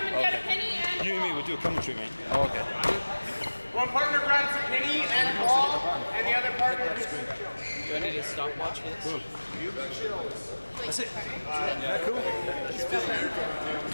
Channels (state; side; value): inverted; both; correlation -1.00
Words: Okay. You and me will do a commentary, mate. Oh, okay. One partner grabs a penny and a ball, and the other partner gets Do I need a stopwatch for this? Cool. That's it. Yeah, cool.